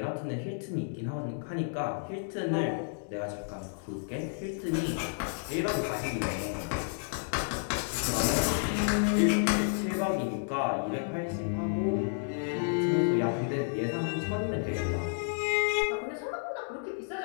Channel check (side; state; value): right; silent; digital silence